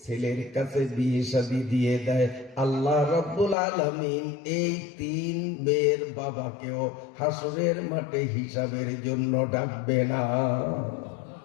ছেলের কাছে বিয়ে শাদী দিয়ে দেয়, আল্লাহ রাব্বুল আলামিন এই 3 মেয়ের বাবাকেও হাসরের মাঠে হিসাবের জন্য ডাকবে না।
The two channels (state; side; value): drops out; right; at 3.6 s